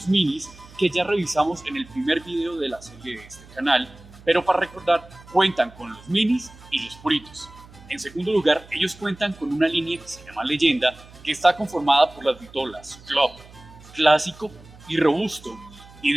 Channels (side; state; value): right; noise; hum, 21 dB below the sound